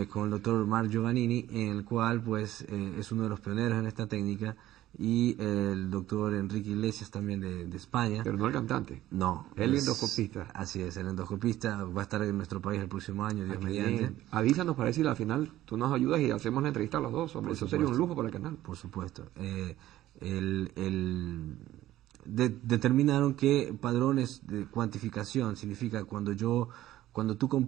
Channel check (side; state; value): left; quieter; 14.5 dB